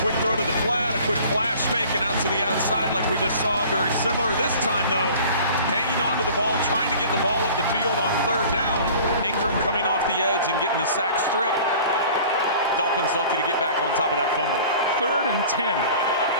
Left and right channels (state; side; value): inverted; both; correlation -0.46